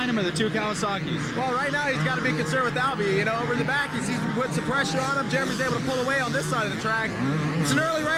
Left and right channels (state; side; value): identical; both; correlation 1.00